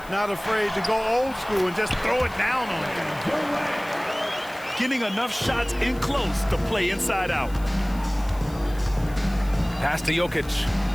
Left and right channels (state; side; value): noise; left; hiss, 21 dB below the sound